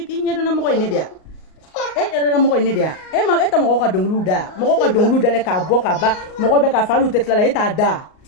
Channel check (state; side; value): late; right; 38 ms